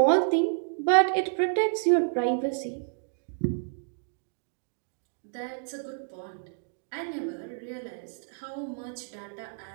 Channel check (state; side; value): silent; left; digital silence